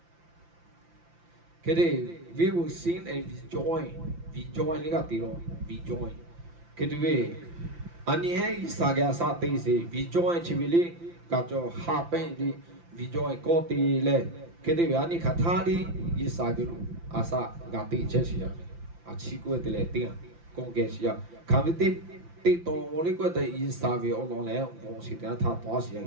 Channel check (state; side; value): late; left; 5.9 ms